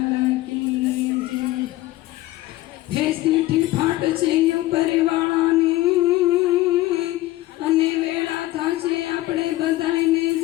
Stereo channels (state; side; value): quieter; right; 17.1 dB